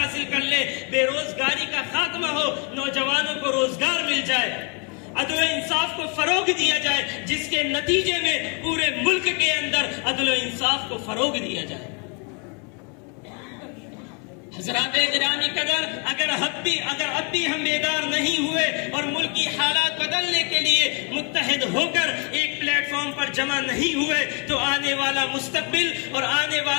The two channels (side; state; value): right; quieter; 35.7 dB